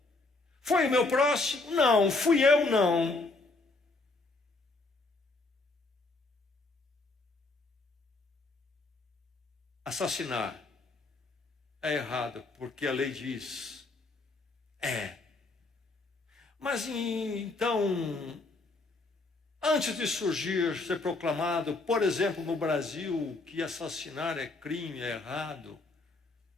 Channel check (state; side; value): quieter; right; 3.4 dB